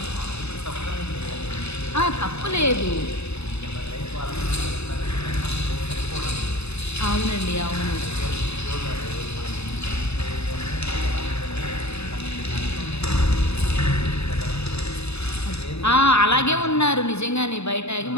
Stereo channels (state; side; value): late; right; 0.80 ms